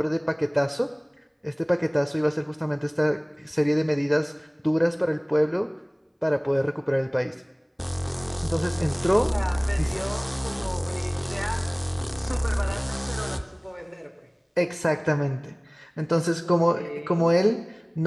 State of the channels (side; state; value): both; identical; correlation 1.00